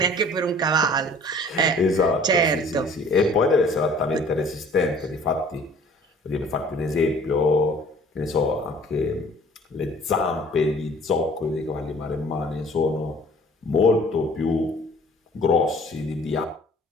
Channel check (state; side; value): normal; both; correlation 0.52